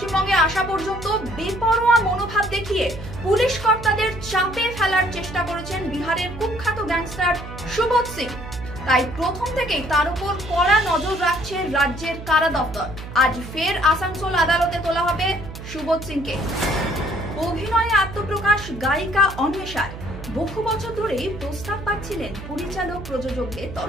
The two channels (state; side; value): noise; right; hum, 12 dB below the sound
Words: আসা পর্যন্ত বেপরোয়া মনোভাব দেখিয়ে পুলিশ কর্তাদের চাপে ফেলার চেষ্টা করেছেন বিহারের কুখ্যাত গ্যাংস্টার সুবোধ সিং। তাই প্রথম থেকেই তার উপর কড়া নজর রাখছে রাজ্যের কারা দপ্তর। আজ ফের আসানসোল আদালতে তোলা হবে সুবোধ সিংকে। অভিনয়ে আত্মপ্রকাশ গায়িকা অন্বেষার। বহু বছর ধরেই প্রস্তাব পাচ্ছিলেন পরিচালক প্রযোজকদের